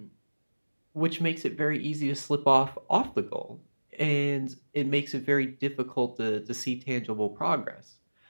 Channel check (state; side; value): inverted; both; correlation -1.00